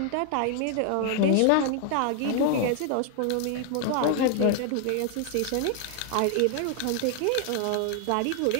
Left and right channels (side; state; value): both; different; correlation 0.00